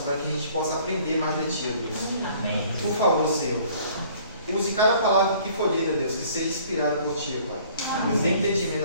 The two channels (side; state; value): both; inverted; correlation -0.55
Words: para que a gente possa aprender mais de Ti, ó Deus. Amém. Por favor, Senhor, use cada palavra que for dita, Deus, que seja inspirada por Ti, Pai. Nos dê entendimento